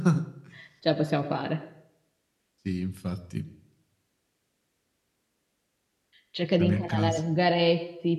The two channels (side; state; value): both; identical; correlation 1.00